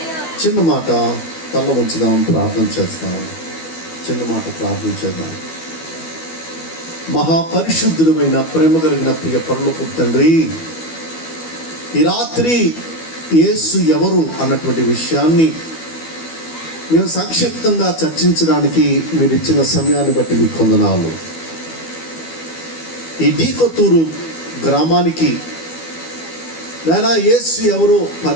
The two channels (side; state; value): right; late; 12 ms